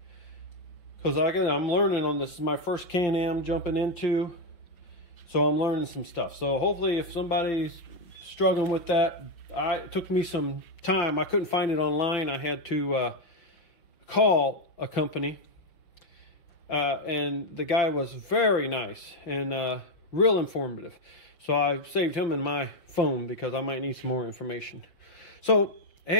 Because I'm learning on this. This is my first Can-Am jumping into. So I'm learning some stuff. So hopefully if somebody's struggling with that, it took me some time. I couldn't find it online. I had to call a company. And the guy was very nice and real informative. So I saved him in my phone because I might need some more information. So,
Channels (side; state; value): right; late; 5.6 ms